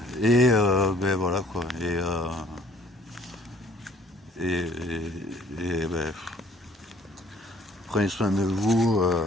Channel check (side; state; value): both; normal; correlation 0.58